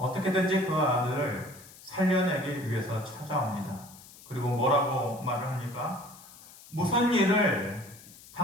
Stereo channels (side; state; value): left; noise; hiss, 20 dB below the sound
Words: 그 아들을 살려내기 위해서 찾아옵니다. 그리고 뭐라고 말을 합니까? 무슨 일을